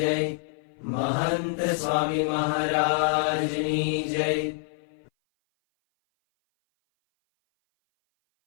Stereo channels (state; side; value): silent; right; 57 dB below the other